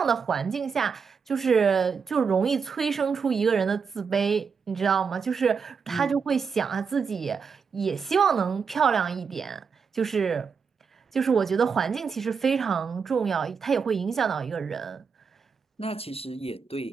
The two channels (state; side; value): quieter; left; 5.9 dB